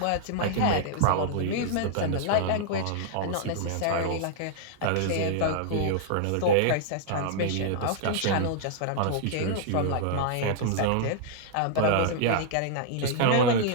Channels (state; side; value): different; both; correlation -0.01